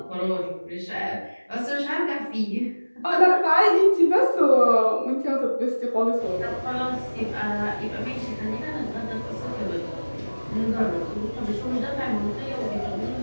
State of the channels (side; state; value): both; inverted; correlation -1.00